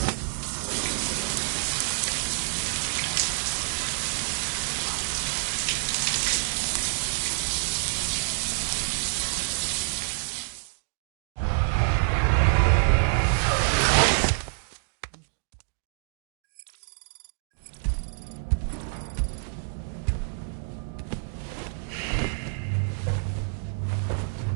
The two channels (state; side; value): silent; left; digital silence